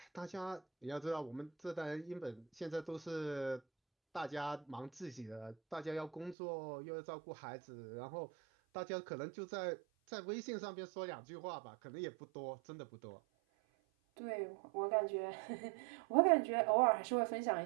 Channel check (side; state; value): left; drops out; at 6.4 s